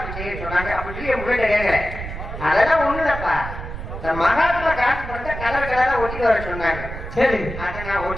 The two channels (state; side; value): noise; right; rumble, 8 dB below the sound